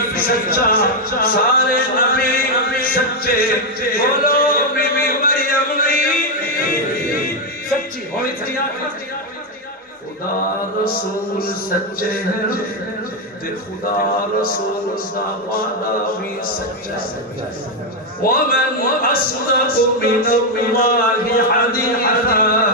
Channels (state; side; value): normal; both; correlation 0.04